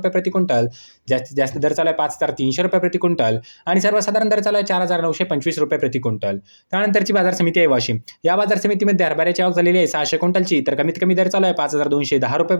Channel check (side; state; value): both; inverted; correlation -1.00